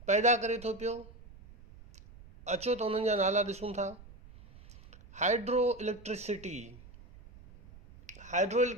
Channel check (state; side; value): noise; right; rumble, 20 dB below the sound